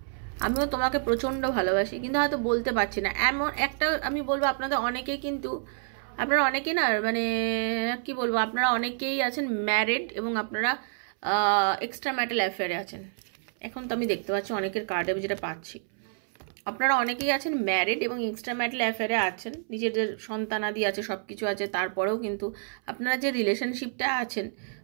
আমিও তোমাকে প্রচণ্ড ভালোবাসি, কিন্তু হয়তো বলতে পারছি না। এমন একটা আমি বলবো, আপনাদের অনেকেই কিন্তু, আপনারা অনেকেই না, মানে কি বলবো, আপনারা অনেকেই আছেন ম্যারিড এবং আপনারা এক্সট্রা ম্যারিটাল অ্যাফেয়ারে আছেন। এখন তো আমি দেখতে পাচ্ছি অনেকের কার্ডে আমি যেটা পাচ্ছি, আপনারা অনেকেই আছেন ম্যারিড এবং এক্সট্রা ম্যারিটাল অ্যাফেয়ারে আছেন, নিজেদের সন্তানাদি আছে, সব কিছু আছে, তারপরেও কিন্তু আপনারা যে রিলেশনশিপটা আছেন,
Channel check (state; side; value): silent; left; 59 dB below the other